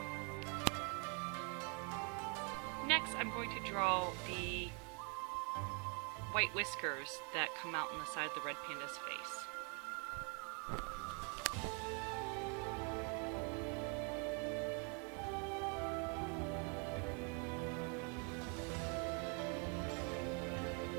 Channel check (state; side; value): quieter; left; 34.3 dB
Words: Next, I'm going to draw the white whiskers that come out on the side of the red panda's face.